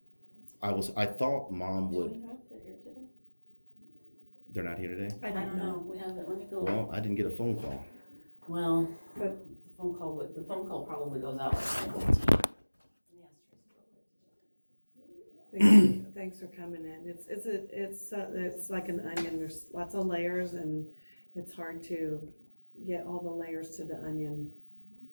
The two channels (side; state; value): both; inverted; correlation -1.00